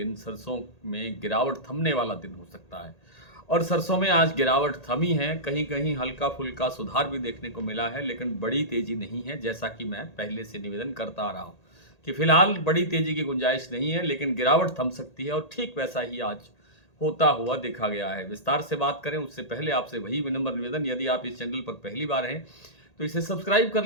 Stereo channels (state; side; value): late; right; 1.8 ms